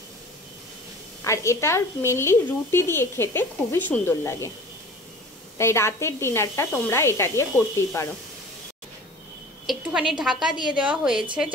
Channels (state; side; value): normal; both; correlation 0.43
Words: আর এটার মেনলি রুটি দিয়ে খেতে খুবই সুন্দর লাগে, তাই রাতের ডিনারটা তোমরা এটা দিয়ে করতেই পারো। একটুখানি ঢাকা দিয়ে দেওয়া হয়েছে